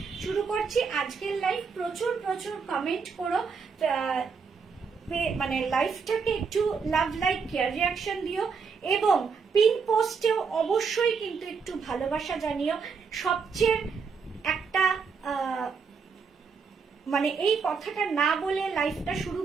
শুরু করছি আজকের লাইভ। প্রচুর প্রচুর কমেন্ট করো, মানে লাইভটাকে একটু লাভ, লাইক, কেয়ার, রিয়াকশন দিও এবং পিন পোস্টেও অবশ্যই কিন্তু একটু ভালোবাসা জানিও। সবচেয়ে একটা মানে এই কথাটা না বলে লাইভটা শুরু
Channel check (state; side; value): quieter; left; 5.5 dB